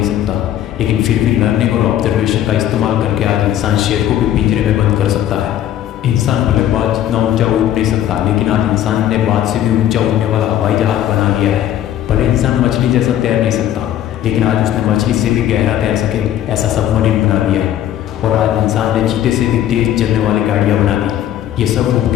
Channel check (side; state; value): right; quieter; 11.6 dB